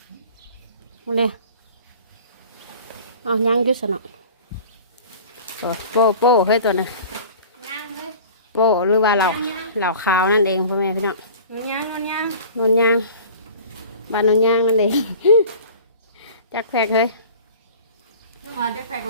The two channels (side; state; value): both; inverted; correlation -0.43